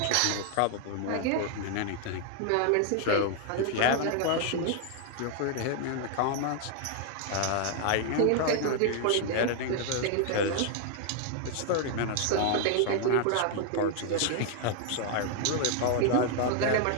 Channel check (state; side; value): different; both; correlation 0.00